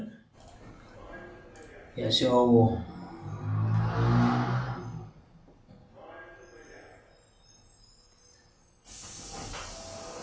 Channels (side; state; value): both; identical; correlation 1.00